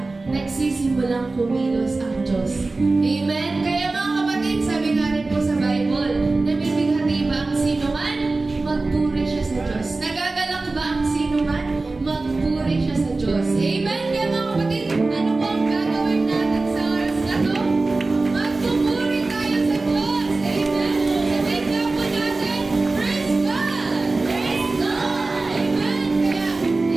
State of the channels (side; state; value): left; quieter; 3.4 dB